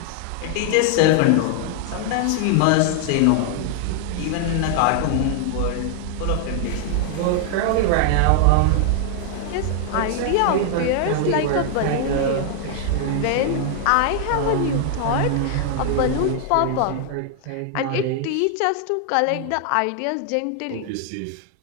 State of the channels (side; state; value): both; different; correlation 0.00